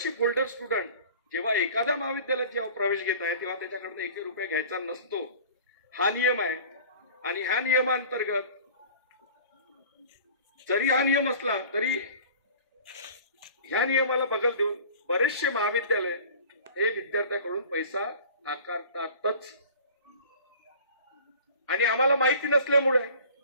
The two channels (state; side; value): inverted; both; correlation -0.44